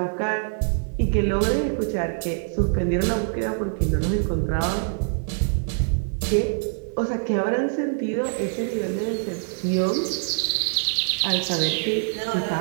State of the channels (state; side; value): silent; left; digital silence